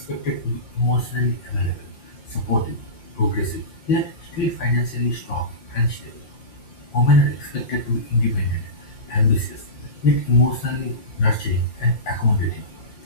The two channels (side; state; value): right; late; 5.7 ms